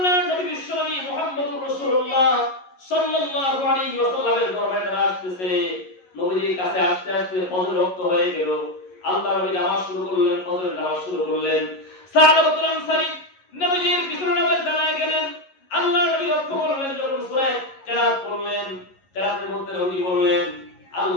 নবী বিশ্বনবী মুহাম্মদুর রাসূলুল্লাহ সাল্লাল্লাহু আলাইহি ওয়াসাল্লামের দরবারে তারা আসতেছে। নবীর কাছে আসতে আসতে ফজর ওয়াক্ত হয়ে গেল। আল্লাহর নবী নামাজ শুরু করলেন, ফজরের নামাজ শুরু করলেন। সাহাবাতুল আনসারী নবীর পিছনে নামাজ দাঁড়ায় গেলেন। আল্লাহর নবী লক্ষ্য করলেন, যখন সূরা কেরাত পড়লেন, কেরাতের মধ্যে নবী বললেন,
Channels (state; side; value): late; right; 11 ms